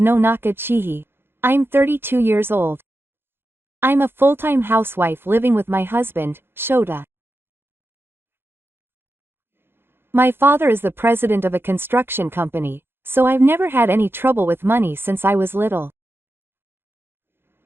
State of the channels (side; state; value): left; late; 0.11 ms